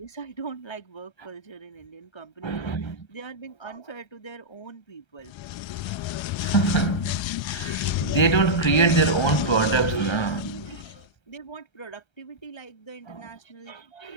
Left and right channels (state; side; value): late; right; 1.3 ms